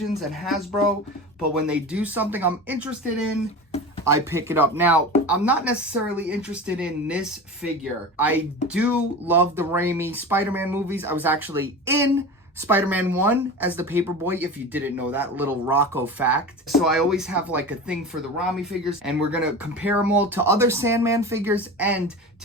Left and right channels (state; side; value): normal; both; correlation 0.31